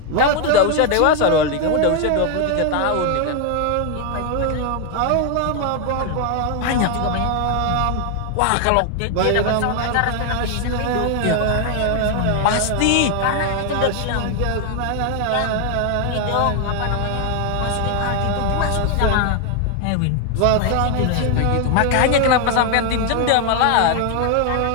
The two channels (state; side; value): different; both; correlation 0.00